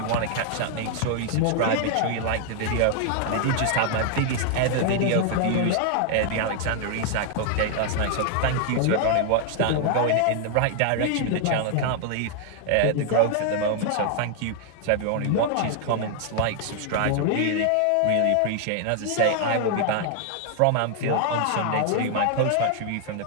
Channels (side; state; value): both; different; correlation 0.00